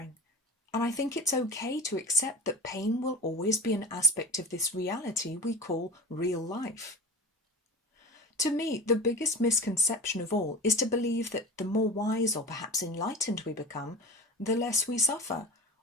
and I think it's okay to accept that pain will always be an aspect of this reality we call real life. To me, the biggest misconception of all is to believe that the more wise or perhaps enlightened we become, the less we suffer,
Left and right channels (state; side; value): normal; both; correlation 0.34